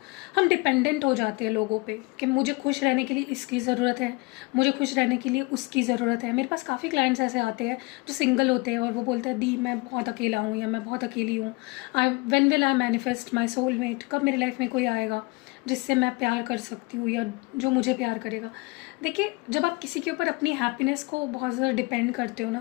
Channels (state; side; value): quieter; right; 25.7 dB